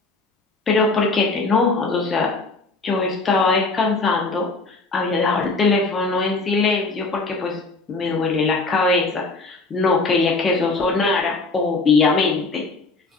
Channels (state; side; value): quieter; right; 3.6 dB